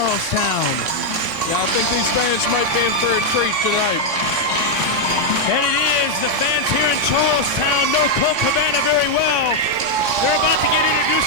Yeah, I think these fans might be in for a treat tonight. And it is. The fans here in Charlestown know Colt Cabana very well. They're about to get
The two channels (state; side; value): late; left; 3.6 ms